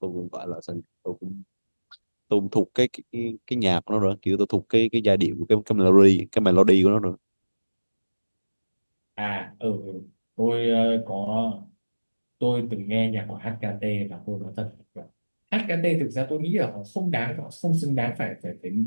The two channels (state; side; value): inverted; both; correlation -1.00